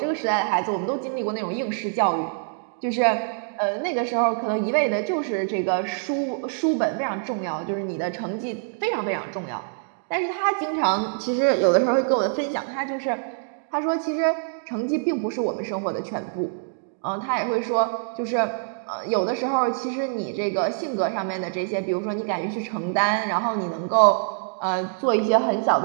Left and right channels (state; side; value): silent; left; digital silence